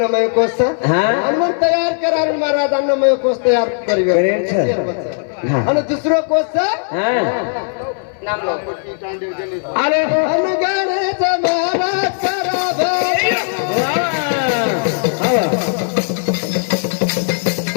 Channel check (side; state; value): right; silent; 64 dB below the other